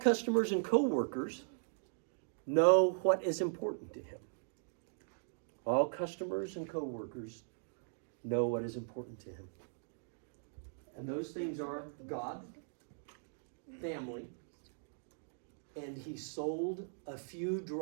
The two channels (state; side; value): silent; left; digital silence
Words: and co-workers know what is important to him. All customers and co-workers know what is important to him. And those things are God, family, and he sold a few